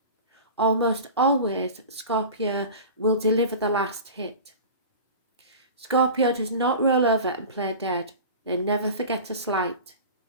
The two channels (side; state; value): both; inverted; correlation -0.34